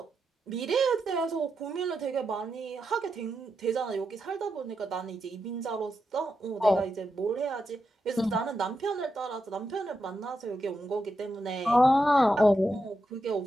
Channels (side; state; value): both; normal; correlation 0.86